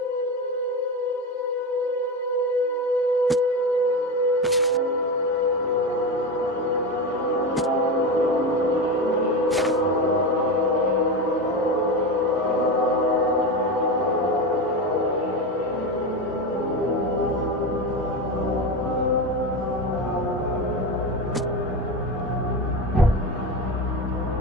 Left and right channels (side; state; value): both; normal; correlation 0.20